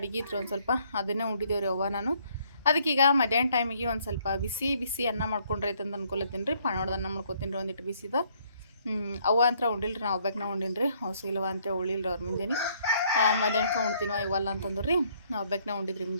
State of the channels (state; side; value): inverted; both; correlation -0.66